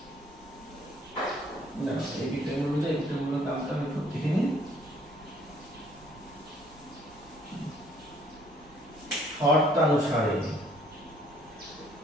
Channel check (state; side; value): normal; both; correlation 0.62